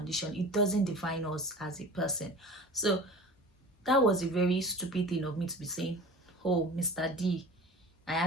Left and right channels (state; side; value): normal; both; correlation 0.39